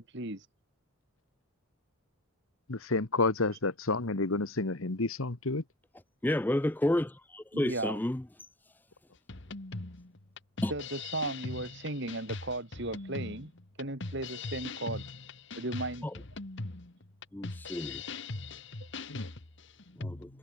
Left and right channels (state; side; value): normal; both; correlation 0.32